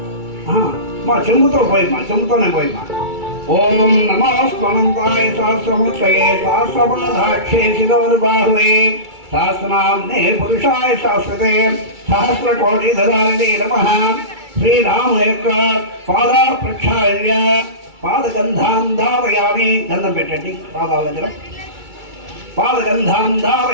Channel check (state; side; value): late; left; 2.3 ms